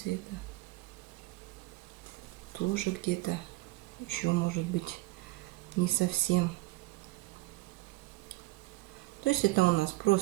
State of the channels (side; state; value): left; quieter; 20.0 dB